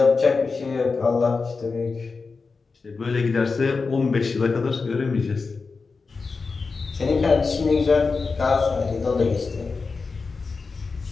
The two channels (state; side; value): quieter; right; 4.5 dB